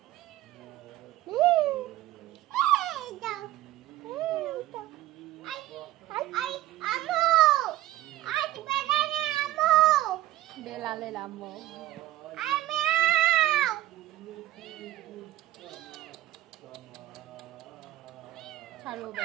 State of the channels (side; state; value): left; quieter; 15.5 dB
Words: এই দাও। আই আমো আজ বেলানে আমো বেলালের আম্মু। আই মেও ছাড়ো,